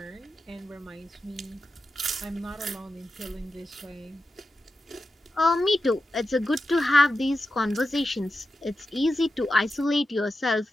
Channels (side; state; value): both; normal; correlation 0.90